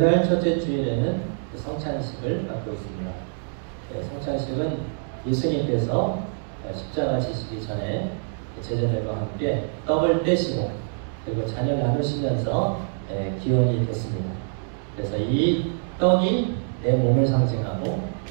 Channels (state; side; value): silent; left; 62 dB below the other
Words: 첫째 주일에는 성찬식을 갖고 있습니다. 성찬식은 예수님께서 십자가 지시기 전에 제자들과 함께 떡을 떼시고 그리고 잔을 나누시면서 기원이 됐습니다. 그래서 이 떡이 내 몸을 상징하고